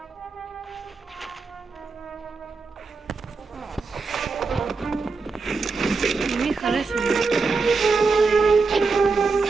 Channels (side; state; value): left; quieter; 4.3 dB